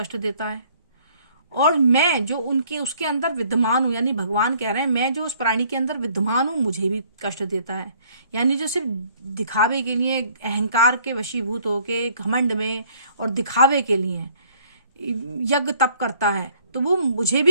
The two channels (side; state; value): both; inverted; correlation -0.60